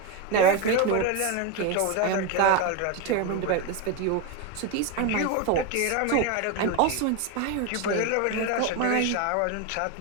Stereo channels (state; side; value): different; both; correlation 0.03